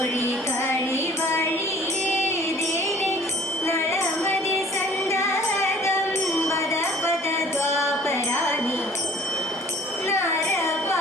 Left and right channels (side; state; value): both; normal; correlation 0.52